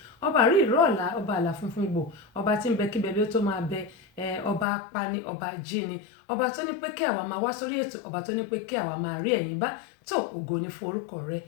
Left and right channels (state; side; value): drops out; right; at 4.7 s